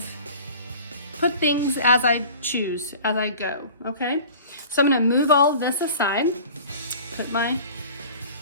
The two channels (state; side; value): inverted; both; correlation -0.43